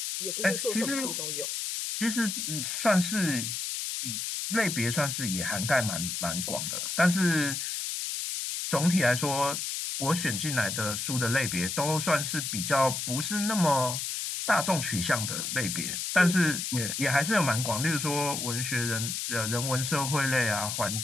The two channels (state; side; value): noise; left; hiss, 3 dB below the sound